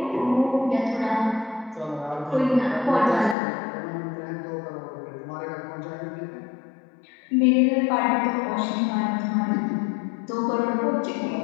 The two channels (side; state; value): right; drops out; at 3.4 s